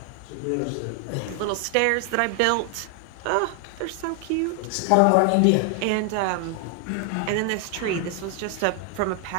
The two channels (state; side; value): different; both; correlation 0.00